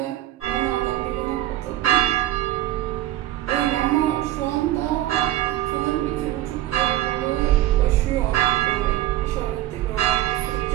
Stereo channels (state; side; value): quieter; left; 14.4 dB